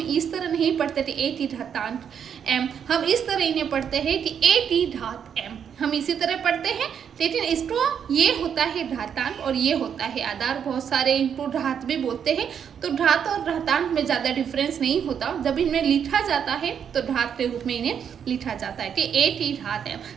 तरह नहीं पढ़ते थे ए की घातांक एम, हम इस तरह इन्हें पढ़ते हैं कि ए की घात एम, हम इसी तरह पढ़ते हैं। लेकिन इसको ये होता है घातांक और ये होता है आधार। बहुत सारे इनको घात भी बोलते हैं। तो घात और घातांक में ज़्यादा डिफरेंस नहीं होता। जब इनमें लिखा जाता है तो घात के रूप में इन्हें लिखा जाता है कि ए की घात एम।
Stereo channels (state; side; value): quieter; left; 7.9 dB